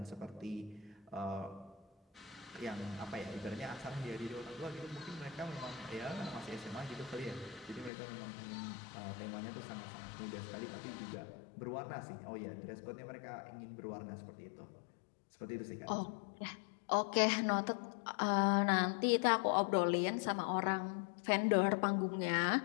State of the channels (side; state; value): right; drops out; at 7.9 s